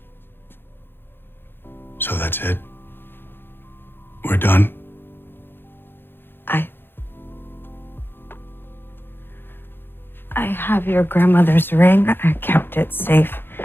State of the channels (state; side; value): late; right; 0.10 ms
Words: So that's it? We're done? I have your grandmother's ring. I kept it safe